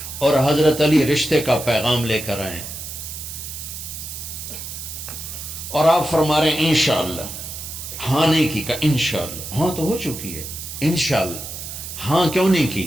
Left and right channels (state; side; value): noise; right; hiss, 9 dB below the sound